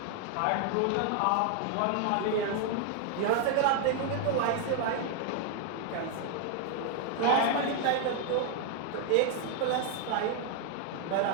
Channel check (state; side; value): different; both; correlation 0.00